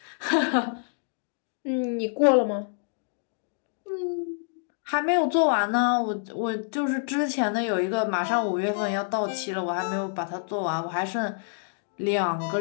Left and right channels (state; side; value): silent; right; digital silence